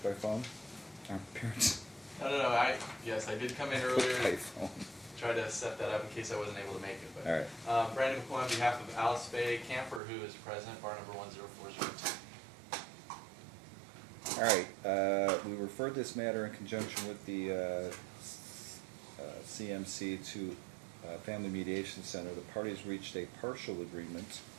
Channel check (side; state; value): left; drops out; at 10.0 s